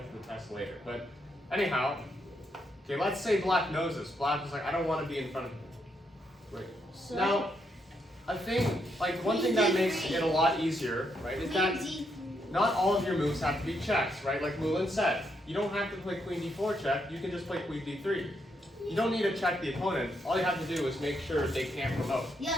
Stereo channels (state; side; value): normal; both; correlation 0.78